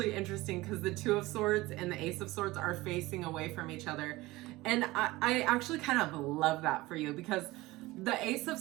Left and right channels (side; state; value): left; quieter; 19.7 dB